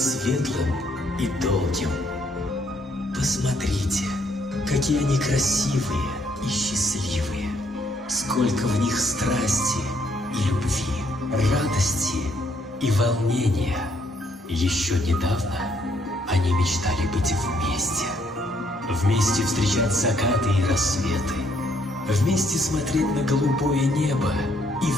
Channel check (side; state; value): both; normal; correlation 0.70